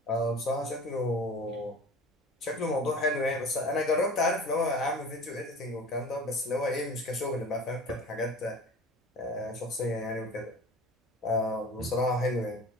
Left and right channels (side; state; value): both; normal; correlation 0.39